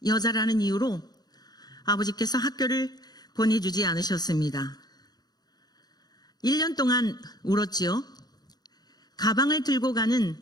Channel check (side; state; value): right; late; 0.19 ms